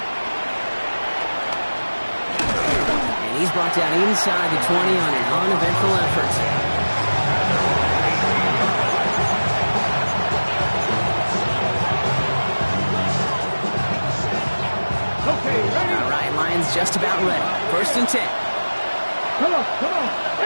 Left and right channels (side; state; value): both; inverted; correlation -1.00